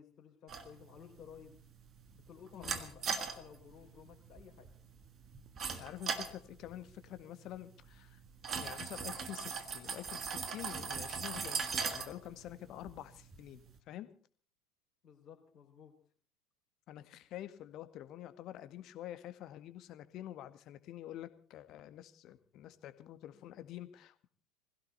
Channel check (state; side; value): normal; both; correlation 0.53